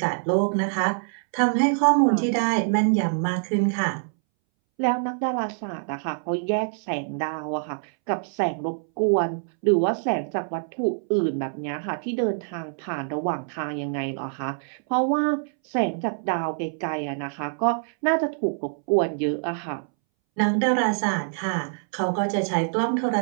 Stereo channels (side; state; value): left; silent; 62 dB below the other